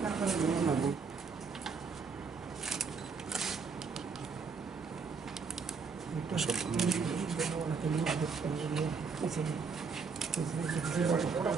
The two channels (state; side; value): quieter; left; 5.2 dB